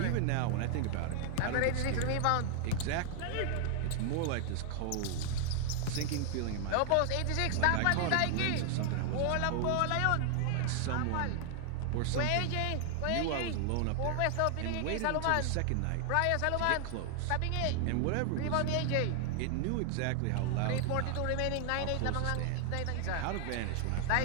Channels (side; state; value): both; different; correlation 0.00